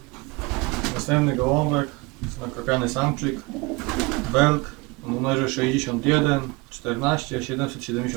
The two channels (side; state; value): left; quieter; 25.6 dB